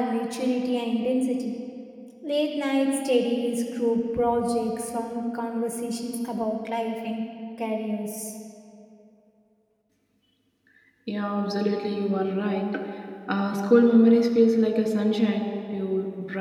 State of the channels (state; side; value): identical; both; correlation 1.00